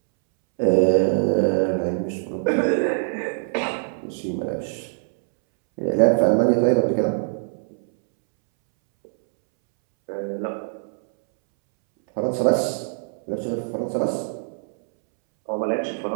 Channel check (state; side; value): silent; left; 63 dB below the other